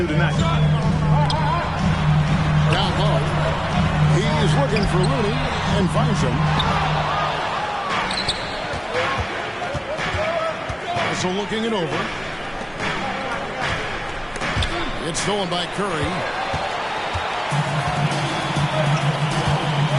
tonight. Down low. He's looking for Looney and finds him. Also looking it over. It's stolen by Curry.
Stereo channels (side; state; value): both; identical; correlation 1.00